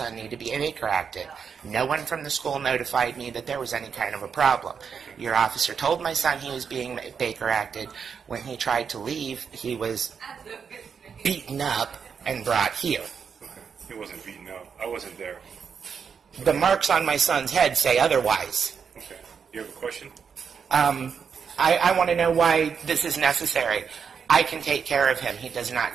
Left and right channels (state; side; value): quieter; left; 6.6 dB